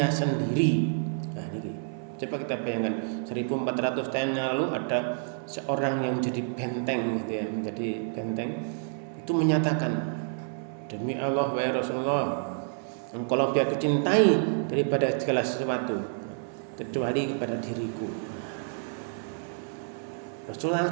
sendiri. Nah, ini coba kita bayangkan 1400 tahun yang lalu ada seorang yang menjadi benteng gitu ya, menjadi benteng itu menyatakan, demi Allah wahai Rasulullah, engkau lebih aku cintai daripada segala sesuatu kecuali kepada diriku. Rasulullah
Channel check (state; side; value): silent; left; 59 dB below the other